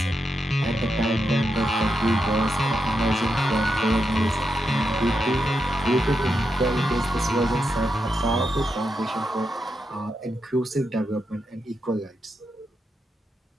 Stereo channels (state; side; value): normal; both; correlation 0.85